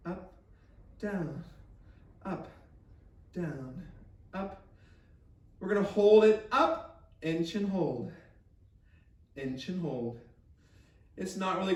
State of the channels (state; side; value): identical; both; correlation 1.00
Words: up, down, up, down, up. We're gonna hold it up, inch and hold, inch and hold. It's not really